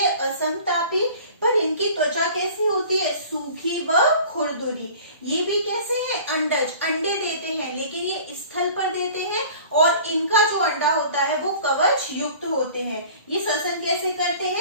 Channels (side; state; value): both; inverted; correlation -0.45